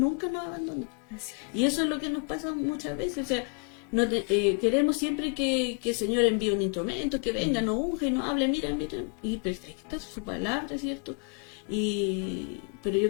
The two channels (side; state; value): right; quieter; 38.4 dB